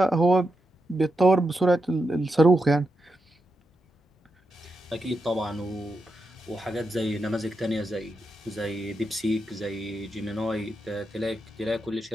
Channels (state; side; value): normal; both; correlation 0.86